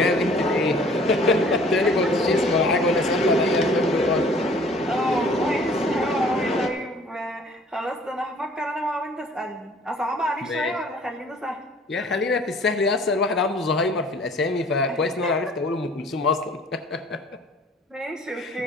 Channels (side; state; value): both; normal; correlation 0.52